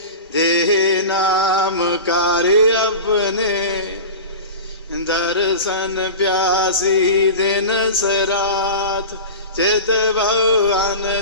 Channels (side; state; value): both; inverted; correlation -0.31